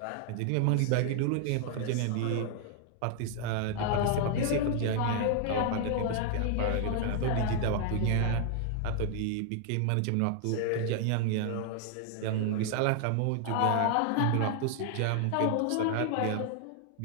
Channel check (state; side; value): different; both; correlation 0.00